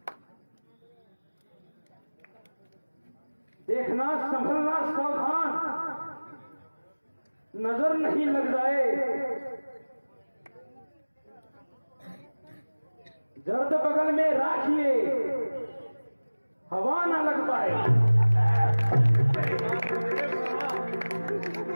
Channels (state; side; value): inverted; both; correlation -1.00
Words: देखना, संभलना, सावधान, नजर नहीं लग जाए। जर्द बगल में राखिए, हवा ना लग पाए।